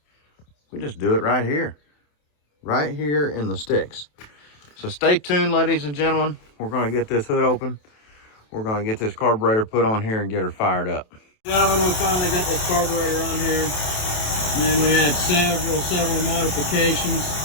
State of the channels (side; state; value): right; late; 27 ms